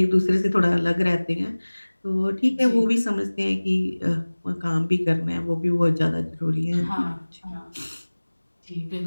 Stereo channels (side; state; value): both; inverted; correlation -1.00